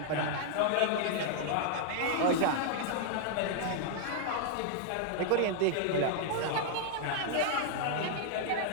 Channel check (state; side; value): different; both; correlation -0.01